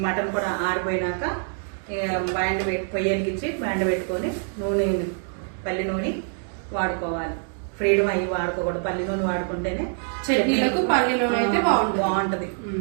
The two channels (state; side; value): silent; left; 57 dB below the other